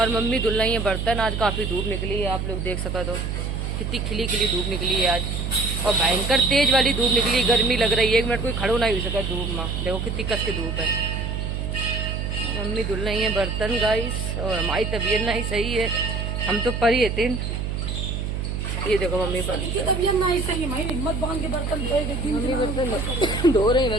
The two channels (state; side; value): noise; right; hum, 3 dB below the sound